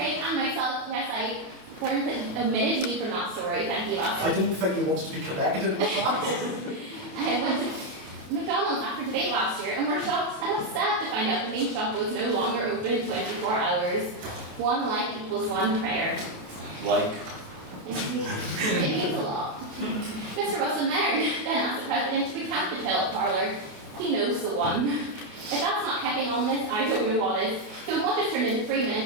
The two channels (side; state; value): left; late; 28 ms